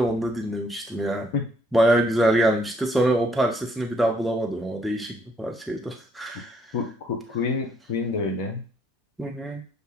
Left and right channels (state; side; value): normal; both; correlation 0.68